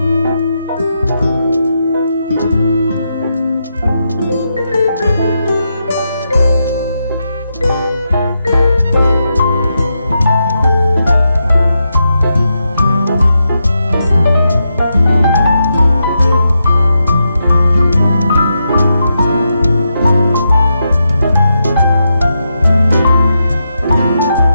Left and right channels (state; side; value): inverted; both; correlation -0.84